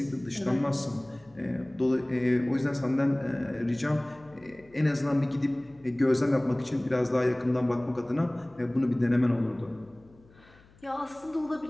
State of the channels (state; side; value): noise; left; hum, 27 dB below the sound